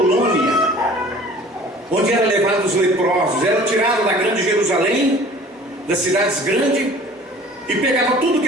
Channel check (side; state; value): both; normal; correlation 0.47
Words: onde eram levados os leprosos. Era tirado da grande Jerusalém, das cidades grandes, e pegava tudo